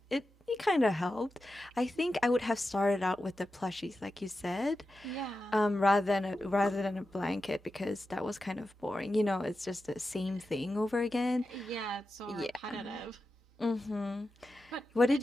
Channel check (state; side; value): normal; both; correlation 0.91